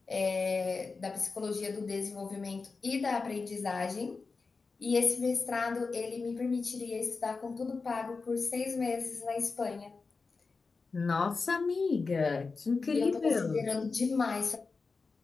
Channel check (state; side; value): quieter; right; 4.4 dB